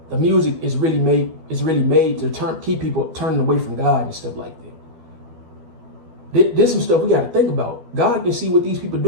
The music is really made to keep people turning away from God and stuff like that. There's some stuff we got to think about. God can see what these people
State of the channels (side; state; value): left; late; 12 ms